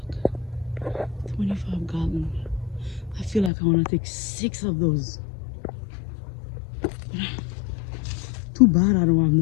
Look, 25 gallons. I feel like I want to take 6 of those. Too bad I don't have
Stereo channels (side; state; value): right; drops out; at 3.5 s